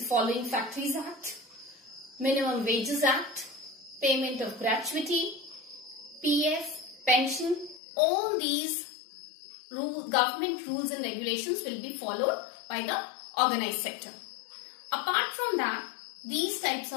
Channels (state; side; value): drops out; right; at 7.8 s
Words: following Factories Act, Minimum Wages Act, payment of gratuity, PF, pension, all these government rules and regulations will be followed by the organized sector. Apart from that, these types